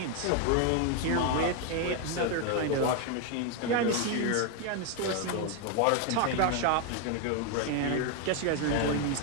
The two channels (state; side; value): different; both; correlation 0.01